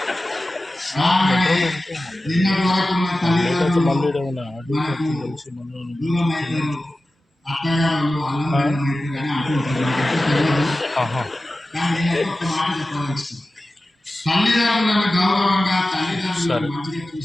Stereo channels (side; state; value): both; normal; correlation 0.95